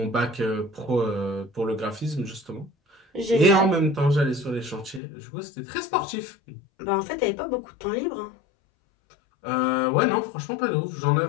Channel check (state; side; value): drops out; right; at 5.0 s